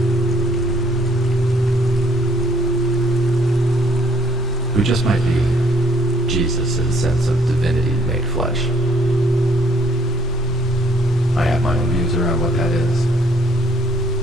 Who just might be Jesus' sense of divinity made flesh. I have my own views around what that is.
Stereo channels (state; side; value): normal; both; correlation 0.63